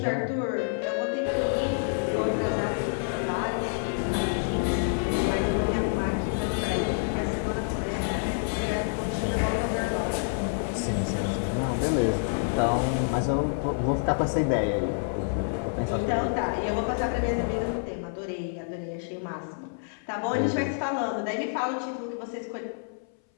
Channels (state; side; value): silent; right; 59 dB below the other